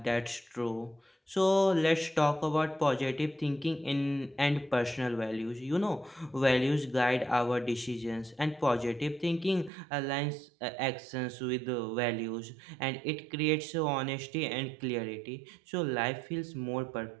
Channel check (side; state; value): left; drops out; at 9.7 s